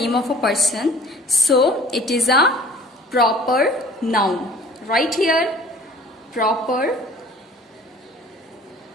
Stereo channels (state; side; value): normal; both; correlation 0.49